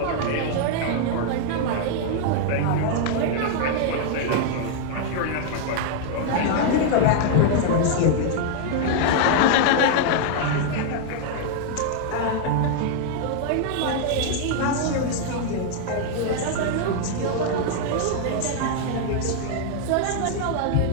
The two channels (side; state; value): both; different; correlation 0.00